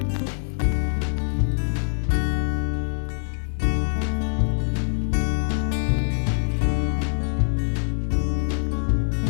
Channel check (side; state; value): right; silent; 63 dB below the other